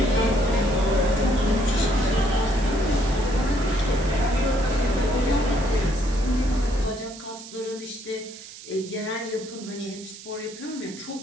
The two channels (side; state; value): right; noise; hiss, 16 dB below the sound